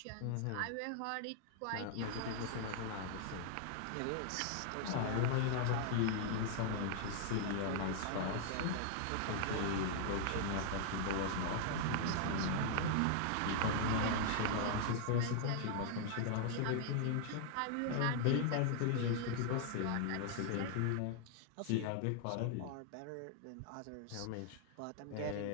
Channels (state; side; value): different; both; correlation -0.01